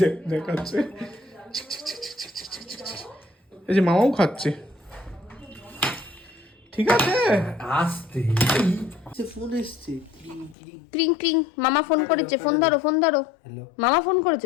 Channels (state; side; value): drops out; right; at 10.6 s